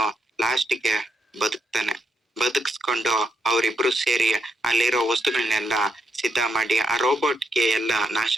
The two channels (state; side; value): normal; both; correlation 0.79